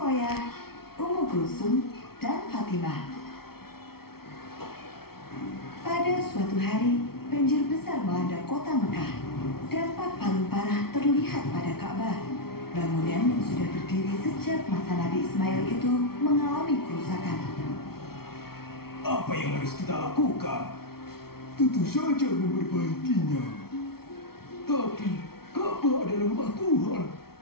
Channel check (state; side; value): late; right; 0.94 ms